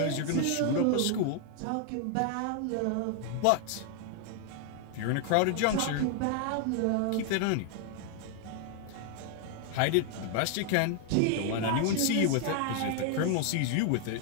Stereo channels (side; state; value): both; different; correlation 0.00